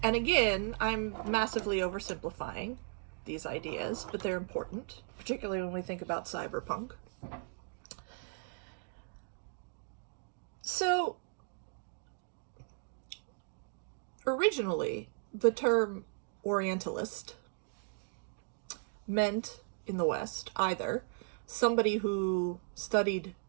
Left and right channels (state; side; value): silent; left; 53 dB below the other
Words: again, I'm massively oversimplifying these ideas, but they're important, particularly when we think about cyberpunk. So, originally, the term Orientalist meant in the West either somebody who studied